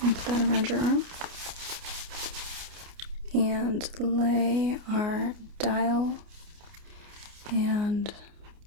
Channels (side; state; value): left; late; 29 ms